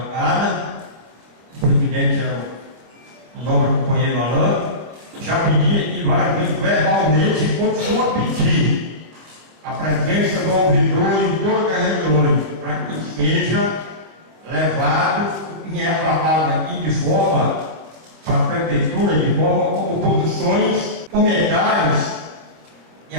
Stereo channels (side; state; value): left; late; 26 ms